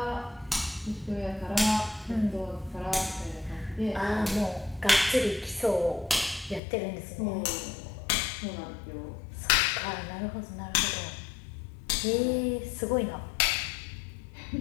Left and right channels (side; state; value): right; drops out; at 6.6 s